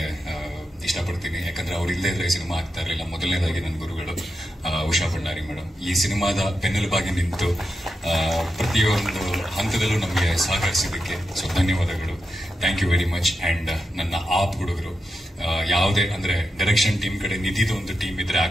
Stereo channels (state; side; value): normal; both; correlation 0.88